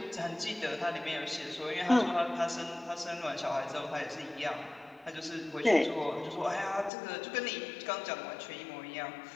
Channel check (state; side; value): drops out; right; at 6.9 s